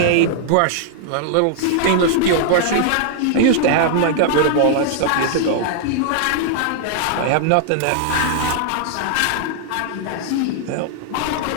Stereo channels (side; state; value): both; different; correlation -0.01